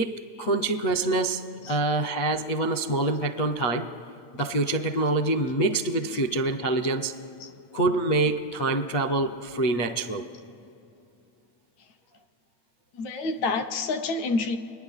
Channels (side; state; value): right; late; 8.4 ms